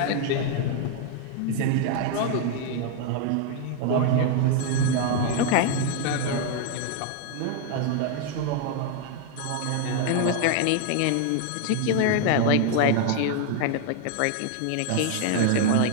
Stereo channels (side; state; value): both; different; correlation 0.00